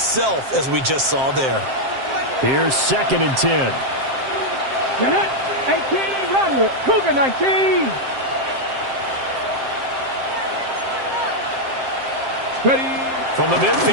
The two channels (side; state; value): left; late; 7.6 ms